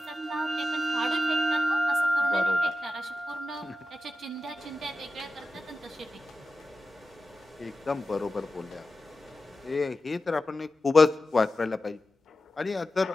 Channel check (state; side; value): normal; both; correlation 0.92